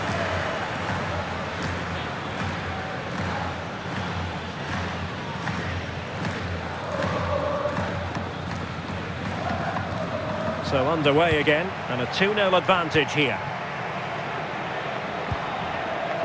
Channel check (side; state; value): both; identical; correlation 1.00